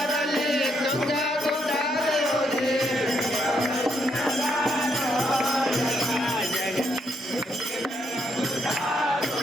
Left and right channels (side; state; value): both; normal; correlation 0.76